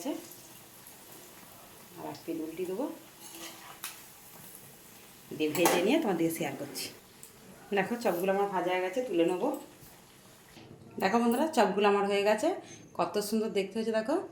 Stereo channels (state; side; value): identical; both; correlation 1.00